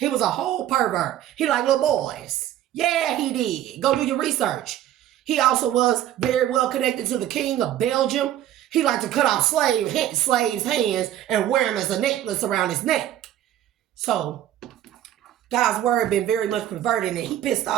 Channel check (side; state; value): left; quieter; 12.2 dB